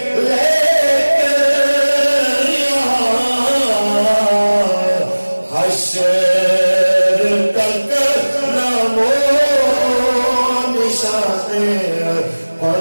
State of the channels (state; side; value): inverted; both; correlation -1.00